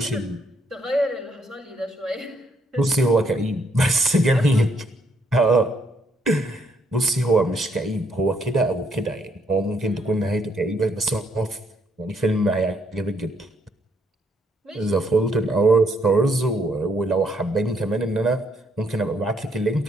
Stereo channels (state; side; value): normal; both; correlation 0.72